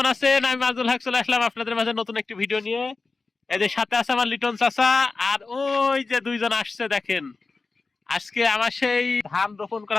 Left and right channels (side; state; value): right; quieter; 4.0 dB